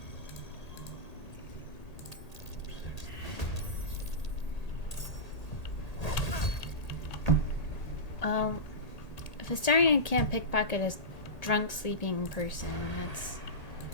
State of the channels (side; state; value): right; late; 1.8 ms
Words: If Astarion can't pickpocket a drunk sleeping person, that's